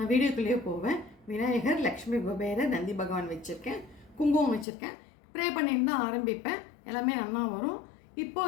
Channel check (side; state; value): right; drops out; at 4.7 s